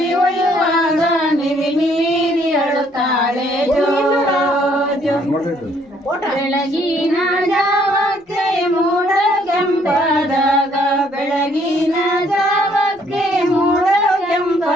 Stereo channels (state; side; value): normal; both; correlation 0.65